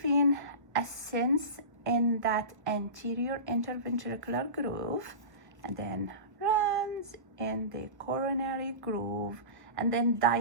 vein ascends in that anterior interventricular groove and then runs in the coronary groove and then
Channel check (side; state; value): left; late; 1.0 ms